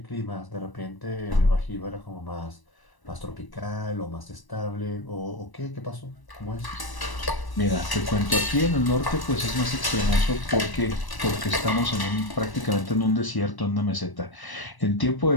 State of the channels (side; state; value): right; late; 1.0 ms